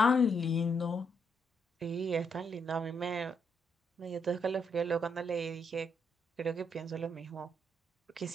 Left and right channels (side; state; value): both; normal; correlation 0.76